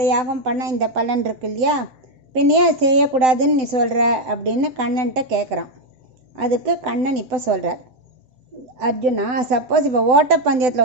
யாகம் பண்ணால் இந்த பலன் இருக்கு இல்லையா, பின்னையே அதை செய்யக்கூடாதுன்னு நீ சொல்கிற அப்படின்னு கண்ணன்ட்ட கேட்குறான். அதுக்கு கண்ணன் இப்போ சொல்கிறார், அர்ஜுனா, சப்போஸ் இப்போ ஓட்டப்பந்தயத்தில்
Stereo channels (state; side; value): late; left; 7.9 ms